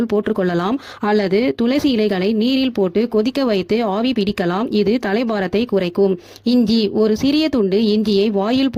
போட்டுக்கொள்ளலாம் அல்லது துளசி இலைகளை நீரில் போட்டு கொதிக்க வைத்து ஆவி பிடிக்கலாம். இது தலைபாரத்தை குறைக்கும். இஞ்சி. ஒரு சிறிய துண்டு இஞ்சியை வாயில்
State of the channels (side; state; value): both; identical; correlation 1.00